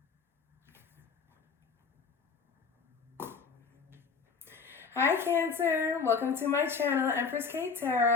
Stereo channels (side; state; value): right; quieter; 5.3 dB